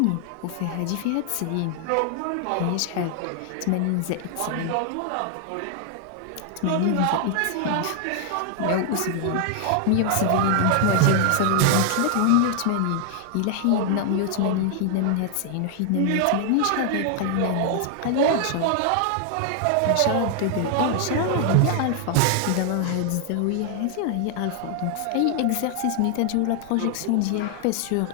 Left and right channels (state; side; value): different; both; correlation 0.00